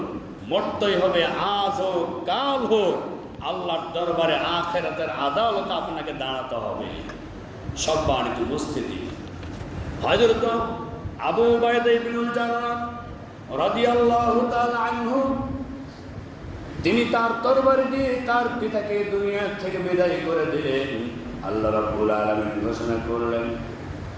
মরতেই হবে, আজ হোক কাল হোক, আল্লাহর দরবারে আখিরাতের আদালতে আপনাকে দাঁড়াতে হবে। সম্মানিত উপস্থিতি, হযরত আবু উবাইদা ইবনুল জাররাহ রাদিয়াল্লাহু তাআলা আনহু, তিনি তার তরবারি দিয়ে তার পিতাকে দুনিয়া থেকে বিদায় করে দিলেন। আল্লাহ রাব্বুল আলামিন ঘোষণা করলেন,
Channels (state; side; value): identical; both; correlation 1.00